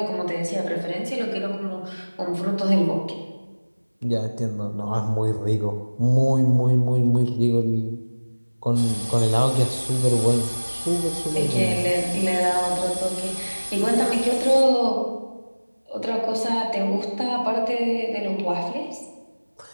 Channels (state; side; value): inverted; both; correlation -1.00